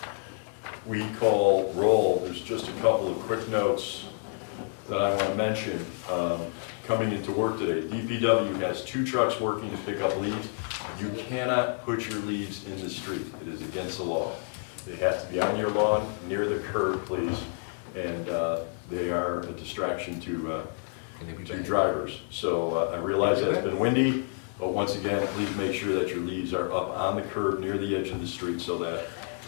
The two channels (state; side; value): silent; right; 59 dB below the other